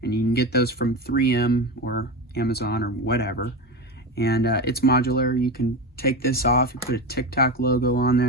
And you can get those from 3M or Amazon or whatever. And it's modular. You can take this off, you put a TikTok logo on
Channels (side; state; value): both; normal; correlation 0.21